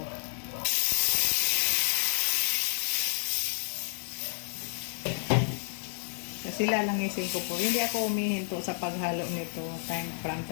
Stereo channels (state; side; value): silent; right; digital silence